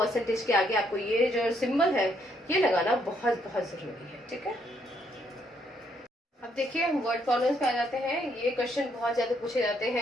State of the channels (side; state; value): both; normal; correlation 0.72